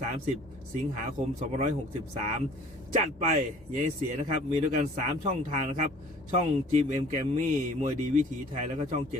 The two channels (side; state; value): both; normal; correlation 0.51